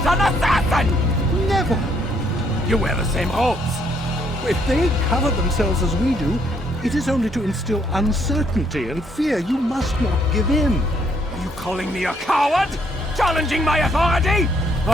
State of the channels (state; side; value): normal; both; correlation 0.70